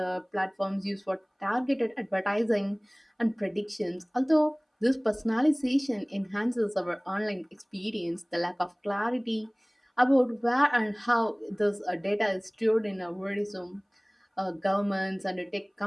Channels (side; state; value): both; identical; correlation 1.00